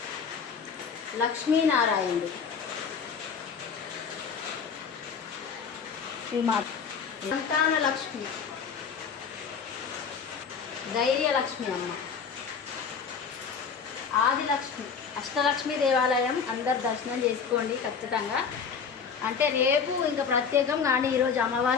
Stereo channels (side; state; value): right; quieter; 6.2 dB